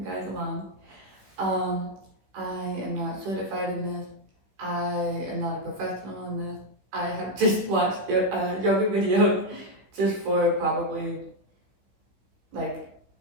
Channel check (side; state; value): left; late; 15 ms